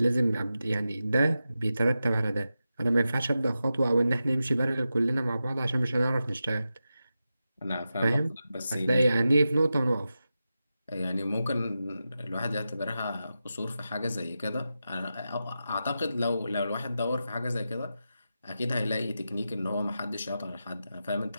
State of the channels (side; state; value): both; inverted; correlation -0.91